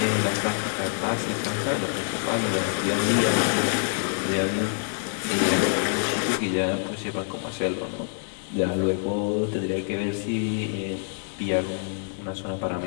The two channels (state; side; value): silent; right; digital silence